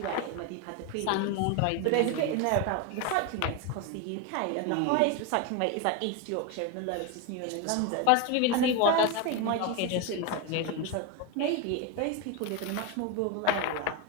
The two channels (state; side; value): different; both; correlation 0.02